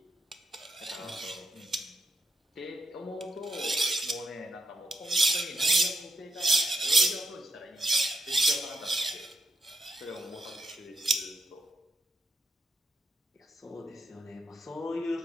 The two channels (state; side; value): normal; both; correlation 0.82